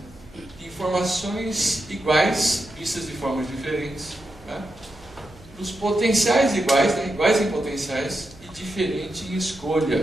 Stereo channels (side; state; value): right; noise; hum, 22 dB below the sound